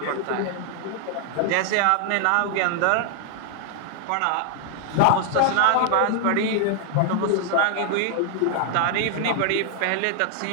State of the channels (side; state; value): both; different; correlation 0.00